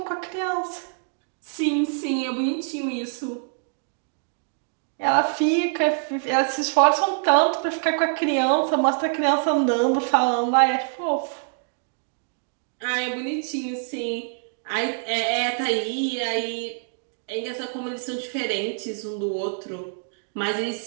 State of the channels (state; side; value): silent; left; digital silence